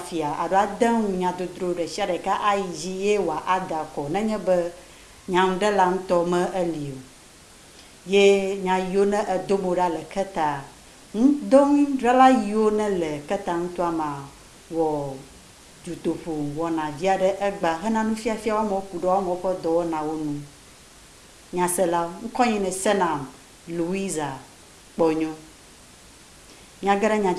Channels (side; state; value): both; identical; correlation 1.00